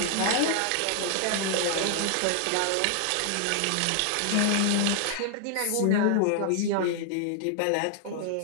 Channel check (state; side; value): different; both; correlation 0.00